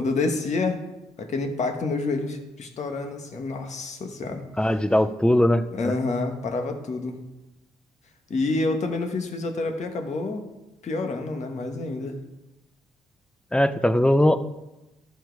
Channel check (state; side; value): normal; both; correlation 0.84